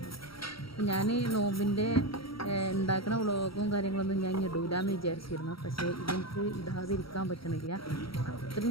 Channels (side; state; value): right; late; 0.75 ms